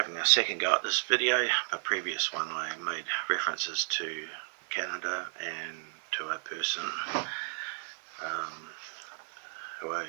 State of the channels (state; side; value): silent; left; digital silence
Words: a second go at this video. A previous one I made references to Canada and to a person who I